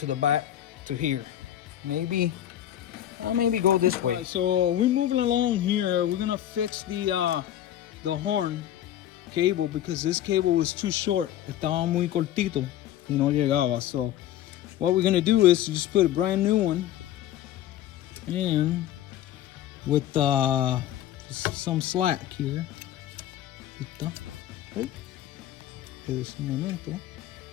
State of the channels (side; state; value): right; quieter; 12.0 dB